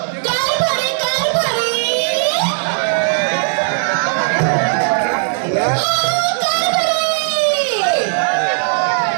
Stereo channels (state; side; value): silent; left; digital silence